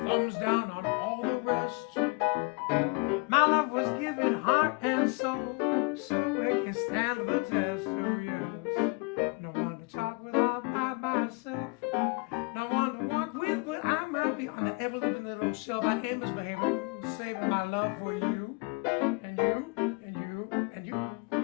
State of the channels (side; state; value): right; quieter; 30.2 dB